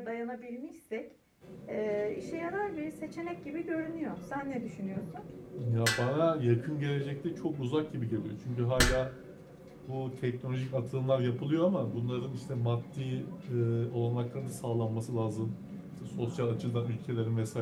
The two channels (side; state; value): both; identical; correlation 1.00